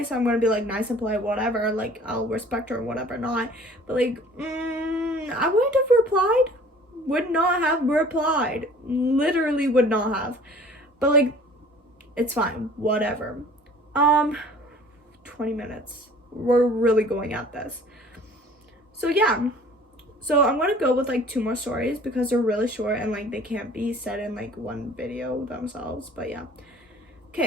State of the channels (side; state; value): both; normal; correlation 0.49